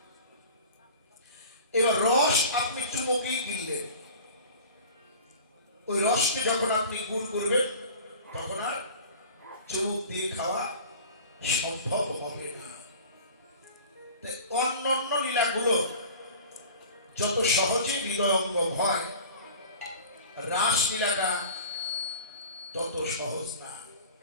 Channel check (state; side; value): inverted; both; correlation -0.40